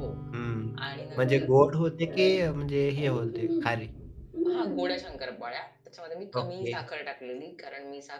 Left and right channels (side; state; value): both; identical; correlation 1.00